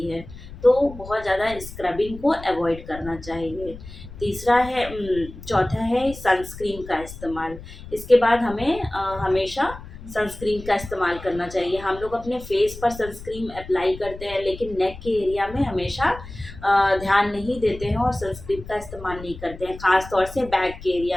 है। तो बहुत ज़्यादा स्क्रबिंग को अवॉइड करना चाहिए। चौथा है सनस्क्रीन का इस्तेमाल। इसके बाद हमें हमेशा सनस्क्रीन का इस्तेमाल करना चाहिए। हम लोग अपने फेस पर सनस्क्रीन अप्लाई करते हैं लेकिन नेक के एरिया में हमेशा ध्यान नहीं देते हैं और सनस्क्रीन का इस्तेमाल नहीं करते हैं, ख़ास तौर से बैक के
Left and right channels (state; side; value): noise; left; rumble, 14 dB below the sound